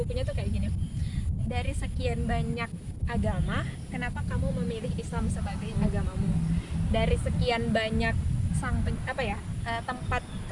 tuh kayak gini. Dari sekian banyak agama, kenapa kamu memilih Islam sebagai agamamu? Dari sekian banyak tempat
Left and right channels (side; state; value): both; identical; correlation 1.00